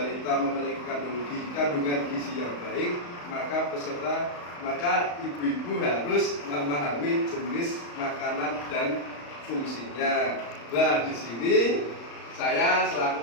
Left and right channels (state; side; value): late; right; 35 ms